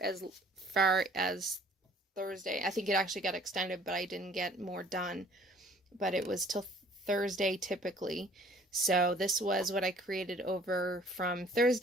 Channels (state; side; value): normal; both; correlation 0.55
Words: as far as Thursday. I think it actually got extended, but I didn't get more done. But it was till Thursday typically. So this was what I created over from